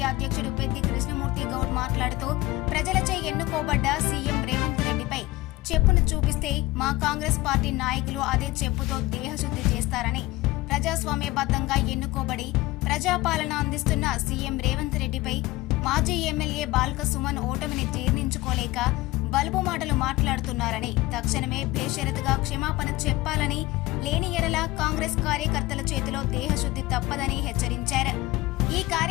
అధ్యక్షుడు పెద్ది కృష్ణమూర్తి గౌడ్ మాట్లాడుతూ ప్రజలచే ఎన్నుకోబడ్డ సీఎం రేవంత్ రెడ్డిపై చెప్పును చూపిస్తే మా కాంగ్రెస్ పార్టీ నాయకులు అదే చెప్పుతో దేహశుద్ధి చేస్తారని, ప్రజాస్వామ్యబద్ధంగా ఎన్నుకోబడి ప్రజాపాలన అందిస్తున్న సీఎం రేవంత్ రెడ్డిపై మాజీ ఎమ్మెల్యే బాల్క సుమన్ ఓటమిని జీర్ణించుకోలేక బలుపు మాటలు మాట్లాడుతున్నారని, తక్షణమే బేషరతుగా క్షమాపణ చెప్పాలని, లేని ఎడల కాంగ్రెస్ కార్యకర్తల చేతిలో దేహశుద్ధి తప్పదని హెచ్చరించారు. ఈ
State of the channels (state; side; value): quieter; right; 19.4 dB